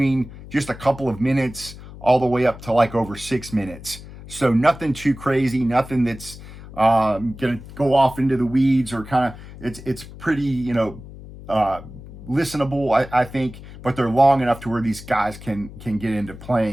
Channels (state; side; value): noise; left; hum, 16 dB below the sound